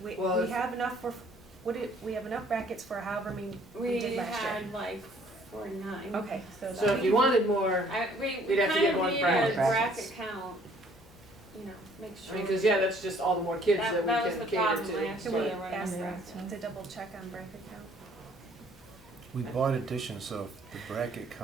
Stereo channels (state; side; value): normal; both; correlation 0.60